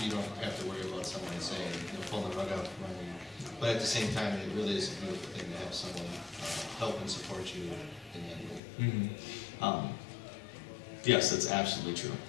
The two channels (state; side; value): drops out; right; at 8.6 s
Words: you don't have to worry about someone saying, pulling the rug out from under you. But at the same time, it really is a beautiful thing to have someone help and support you in that way. Mm-hmm. Yes, that's absolutely true.